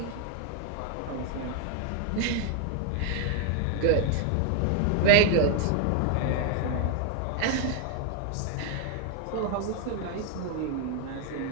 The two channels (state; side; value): different; both; correlation 0.01